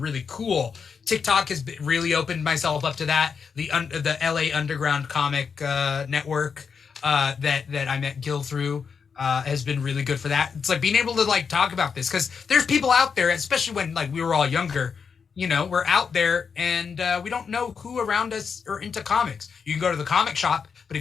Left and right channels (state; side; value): quieter; right; 6.1 dB